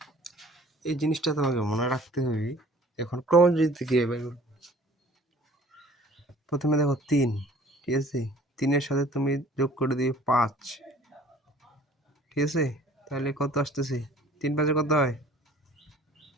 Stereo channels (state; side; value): normal; both; correlation 0.51